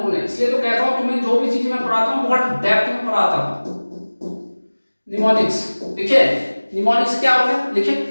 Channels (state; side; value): inverted; both; correlation -1.00